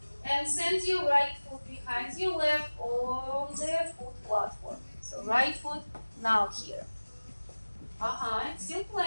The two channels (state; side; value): inverted; both; correlation -1.00